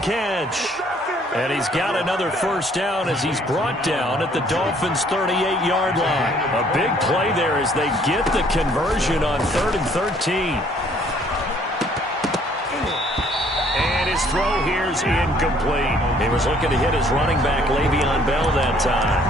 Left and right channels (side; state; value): both; normal; correlation 0.61